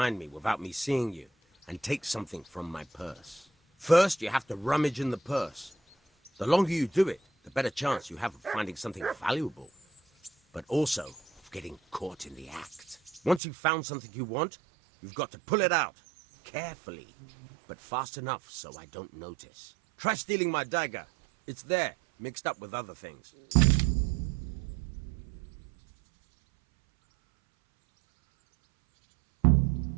me without me seeing you, and take something from my purse. First, you have to rummage in the purse. The longer you do it, the better chance you have of finding something valuable, but also of getting caught in the act. Once you've found something you want, you've got to pull it out, carefully, but fast enough so I don't notice. Try stealing my dagger. It's there, mixed up with other things.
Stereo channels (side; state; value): left; drops out; at 13.4 s